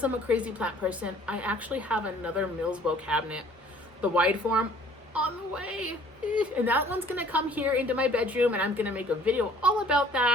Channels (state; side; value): normal; both; correlation 0.55